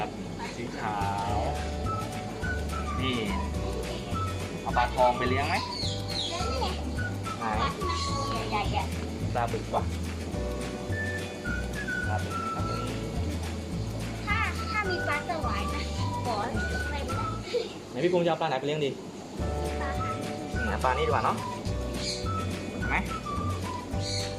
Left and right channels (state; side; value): identical; both; correlation 1.00